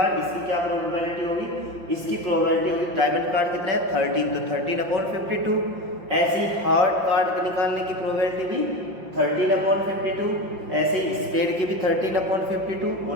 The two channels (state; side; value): late; left; 5.6 ms